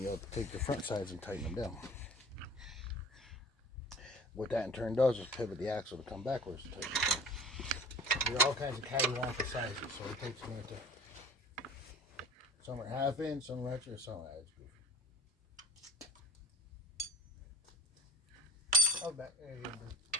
you'll take the front sides and tighten them down. What that in turn does is pivot the axle to come backwards to tighten it down. There are all kinds of cattywampus sizes, so it takes a minute to. Some are half inch, some are extra, some are it's goofy. Oh, back there you go.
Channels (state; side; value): normal; both; correlation 0.44